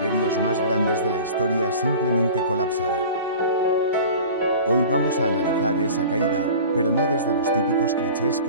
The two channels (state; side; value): inverted; both; correlation -0.40